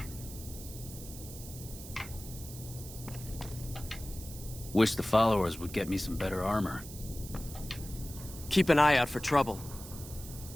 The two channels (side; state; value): right; noise; hiss, 13 dB below the sound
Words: Wish the followers would get me some better armor. Keep an eye out for trouble.